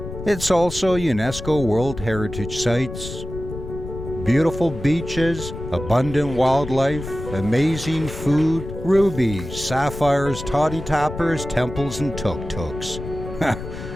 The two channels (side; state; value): left; noise; rumble, 9 dB below the sound